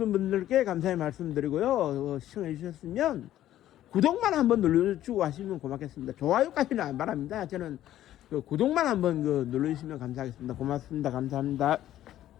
분들께 감사의 말씀드리고요. 시청해 주셨으면 구독만 한번 눌러주고 하시면 고맙겠습니다. 좋아요까지는 안 바랍니다. 저는 그 구독만 한번 눌러주시면 감사하겠습니다. 고맙습니다. 감사합니다.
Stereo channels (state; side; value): quieter; right; 12.9 dB